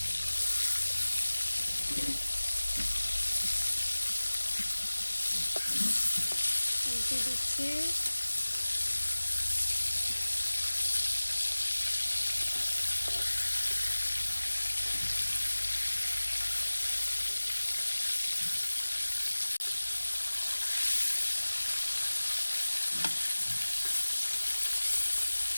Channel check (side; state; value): both; inverted; correlation -1.00